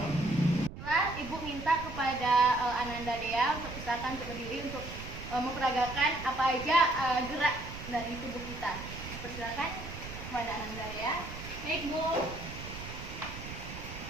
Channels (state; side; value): noise; right; rumble, 10 dB below the sound